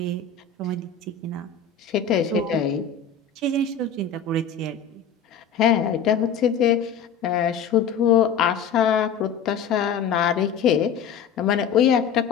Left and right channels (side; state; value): right; quieter; 6.7 dB